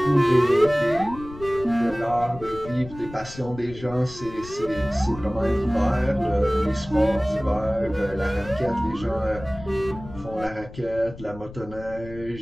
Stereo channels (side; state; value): left; noise; rumble, 15 dB below the sound